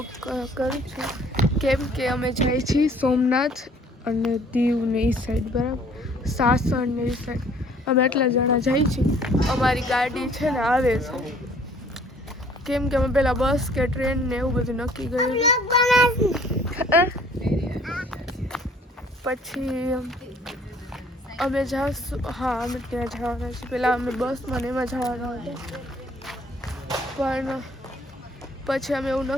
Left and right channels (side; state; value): both; normal; correlation 0.57